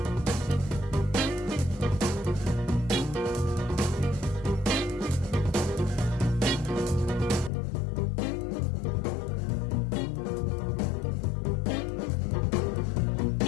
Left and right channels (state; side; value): drops out; right; at 7.5 s